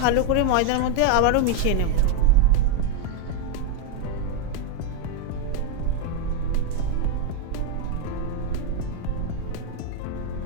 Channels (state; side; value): different; both; correlation 0.01